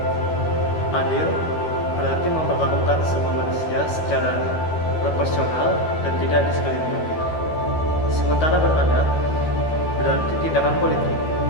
Adil berarti memperlakukan semua manusia secara proporsional dan tidak diskriminatif. Sementara beradab berarti tindakan politik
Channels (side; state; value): right; late; 13 ms